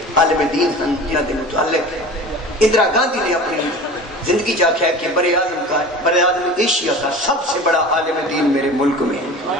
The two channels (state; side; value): normal; both; correlation 0.37